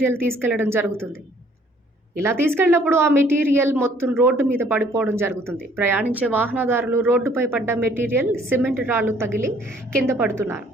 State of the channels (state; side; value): normal; both; correlation 0.60